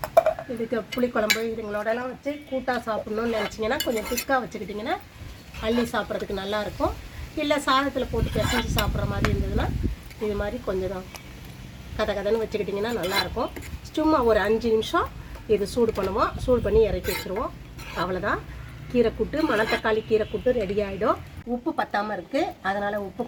இதுக்கு புளிக்குழம்பு இதுங்களோடலாம் வச்சு கூட்டாக சாப்பிட்ணுன்னு நினச்சிங்கன்னா கொஞ்சம் திக்காக வச்சுக்கிட்டிங்கன்னா அள்ளி சாப்பிட்றதுக்கு நல்லாயிருக்கும். இல்லை சாதத்தில் போட்டு பிசைஞ்சு சாப்பிட்ற மாதிரி இருந்ததுன்னா இது மாதிரி கொஞ்சம் கதன்னு வச்சுக்கிட்டிங்கன்னா நல்லாயிருக்கும். சும்மா ஒரு 5 நிமிஷம் இது சூடு பண்ணுவோம். சூடு பண்ணி இறக்கி வச்சுருவோம். அவ்வளோதான், கீரைக்கூட்டு, மணத்தக்காளி கீரைக்கூட்டு ரெடி ஆகிடும். உப்பு பத்தாமல் இருக்குது, அதனால் உப்பு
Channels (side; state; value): both; identical; correlation 1.00